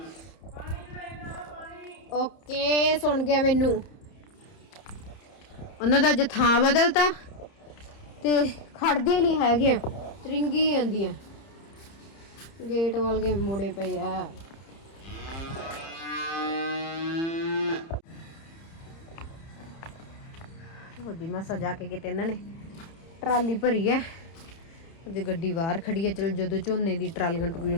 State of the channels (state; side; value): late; right; 30 ms